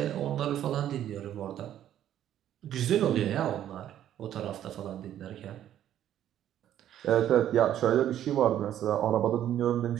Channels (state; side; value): quieter; left; 11.3 dB